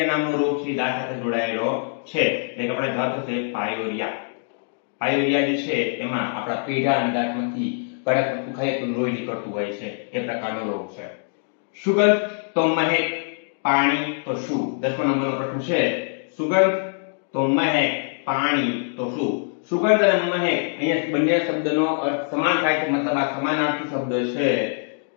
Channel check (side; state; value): right; silent; 63 dB below the other